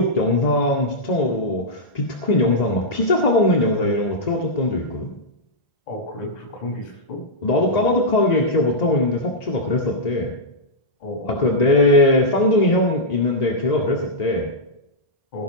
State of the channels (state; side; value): late; right; 1.9 ms